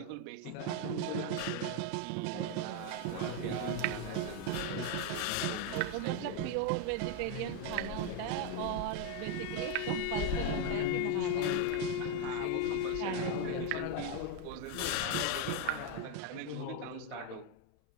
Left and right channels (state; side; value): different; both; correlation 0.01